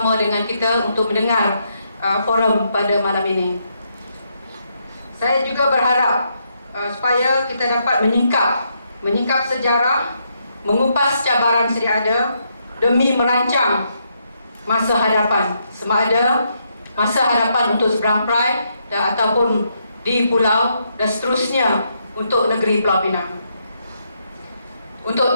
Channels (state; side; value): inverted; both; correlation -0.77